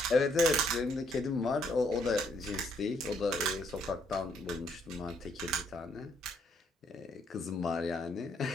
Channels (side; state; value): both; normal; correlation 0.71